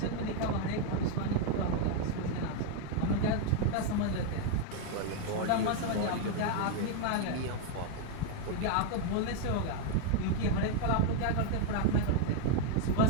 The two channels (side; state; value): both; different; correlation 0.01